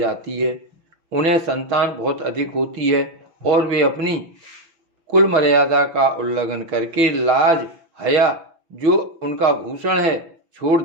है। उन्हें संतान बहुत अधिक होती है और वे अपनी कुल मर्यादा का उल्लंघन करके लाज, हया जो उनका भूषण है छोड़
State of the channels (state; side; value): late; left; 6.3 ms